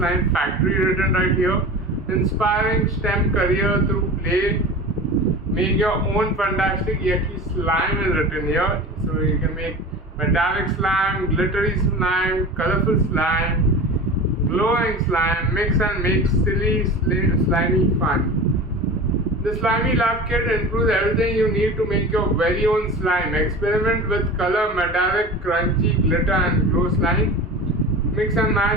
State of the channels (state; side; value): normal; both; correlation 0.33